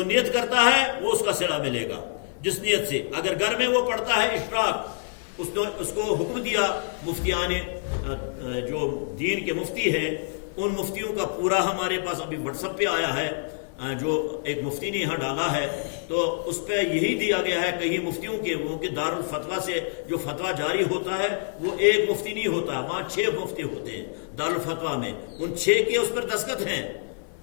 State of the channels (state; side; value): silent; right; 61 dB below the other